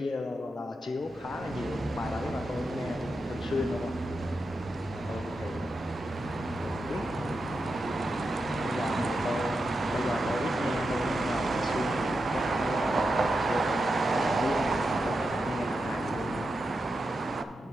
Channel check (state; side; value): normal; both; correlation 0.88